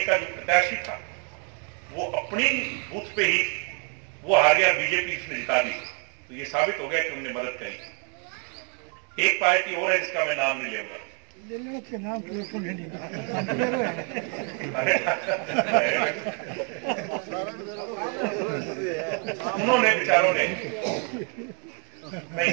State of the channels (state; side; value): quieter; left; 36.8 dB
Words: का जो प्रत्याशी था वो अपनी बूथ पे ही वो हार गया, बीजेपी इसने जिता दी। तो ये साबित हो गया कि उन्होंने मदद करी। एक पार्टी और है जिसका मैं नाम नहीं लूंगा, उन्होंने बेचारों ने, मैं